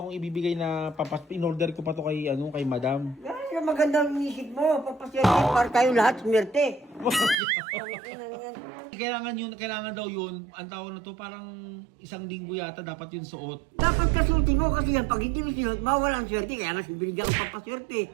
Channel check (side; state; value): left; drops out; at 7.4 s